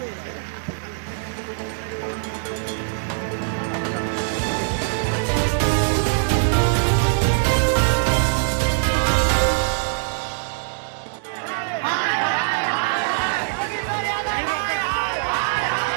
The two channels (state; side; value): silent; left; digital silence